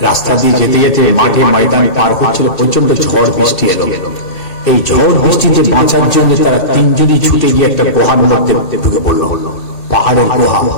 রাস্তা দিয়ে যেতে যেতে মাঠে ময়দানে পার হচ্ছিল, প্রচন্ড ঝড় বৃষ্টি এলো। এই ঝড় বৃষ্টিতে বাঁচার জন্য তারা তিনজনই ছুটে গিয়ে একটা গুহার মধ্যে ঢুকে পড়ল, পাহাড়ের গুহা।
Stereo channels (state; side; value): late; right; 2.7 ms